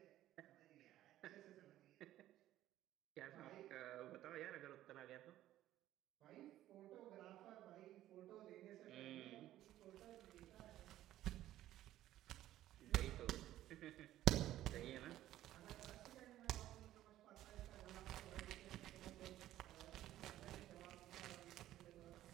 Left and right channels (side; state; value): left; quieter; 13.7 dB